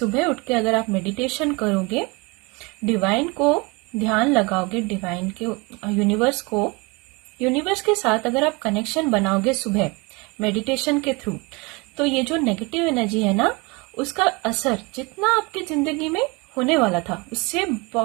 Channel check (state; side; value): quieter; left; 27.2 dB